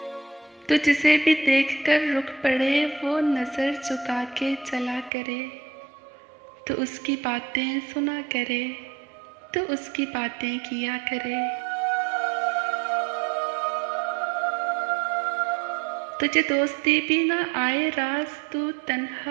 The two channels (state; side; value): drops out; left; at 5.1 s